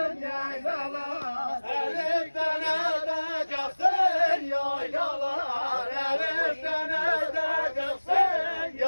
yaylalar Elif'ten edeceksin yaylalar Elif'ten edeceksin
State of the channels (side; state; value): both; inverted; correlation -1.00